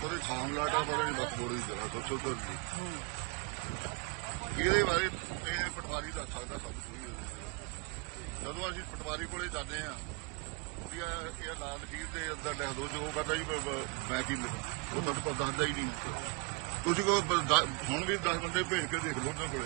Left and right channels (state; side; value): quieter; left; 28.9 dB